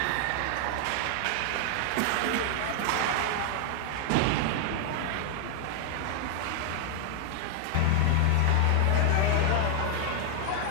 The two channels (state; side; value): different; both; correlation 0.00